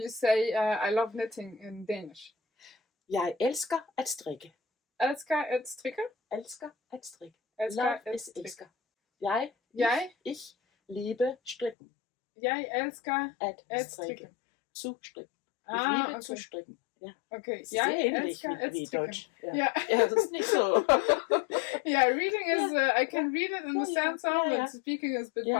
say I love knitting in Danish. Jeg elsker at strikke. Elsker at strikke? Elsker at strikke. Love is elsker. Ich liebe strikken. Jeg elsker at strikke. Zu strikken. Ich liebe zu strikken. Ja. Okay. Sehr ähnlich wie Deutsch. Ja, das ist nicht so. Yeah, reading is, I can read it, understand some, but speaking is a bit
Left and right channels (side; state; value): right; drops out; at 11.8 s